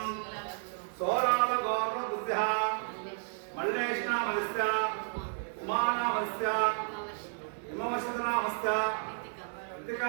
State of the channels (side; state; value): left; silent; 56 dB below the other